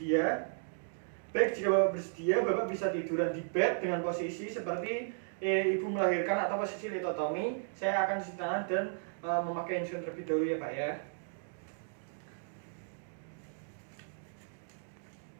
Baik, jika Bapak bersedia, Bapak bisa tiduran di bed dengan posisi seperti ibu melahirkan atau posisi litotomi. Saya akan cuci tangan dan memakai insulin terlebih dahulu ya Pak ya.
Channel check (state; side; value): silent; left; digital silence